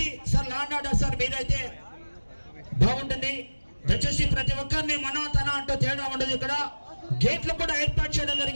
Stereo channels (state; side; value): inverted; both; correlation -1.00